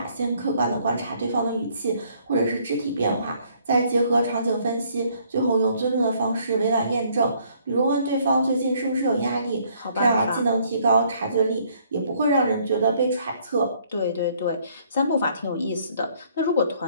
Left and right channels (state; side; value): inverted; both; correlation -0.64